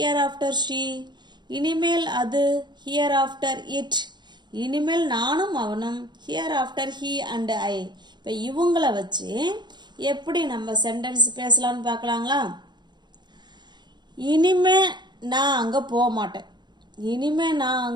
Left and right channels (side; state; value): left; late; 0.21 ms